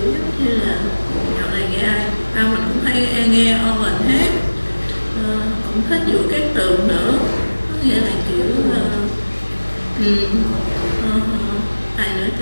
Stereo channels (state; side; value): inverted; both; correlation -1.00